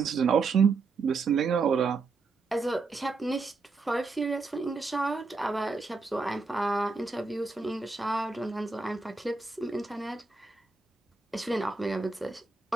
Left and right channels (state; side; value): quieter; left; 4.3 dB